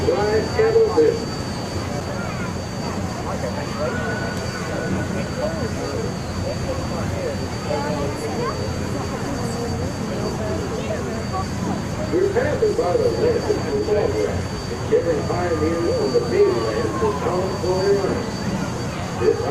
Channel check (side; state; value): both; identical; correlation 1.00